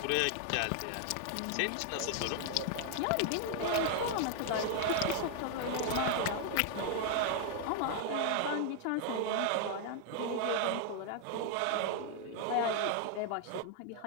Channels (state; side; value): different; both; correlation 0.00